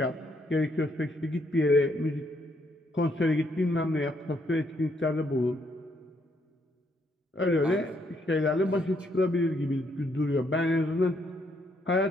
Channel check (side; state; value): both; normal; correlation 0.72